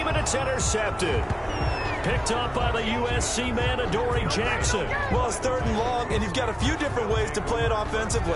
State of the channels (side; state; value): both; identical; correlation 1.00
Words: and it's intercepted. Picked up by the USC man, Adoree Jackson. Well, it's 3rd and long, and you've got a few different ways to play it